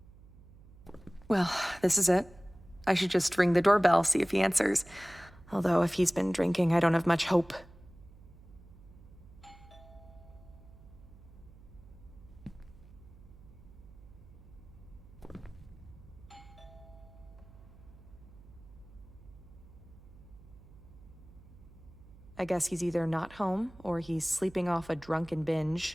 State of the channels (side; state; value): right; noise; hum, 21 dB below the sound